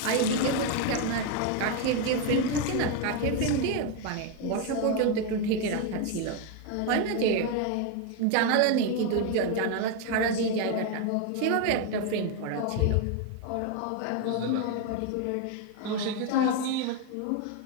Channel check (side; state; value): both; different; correlation 0.01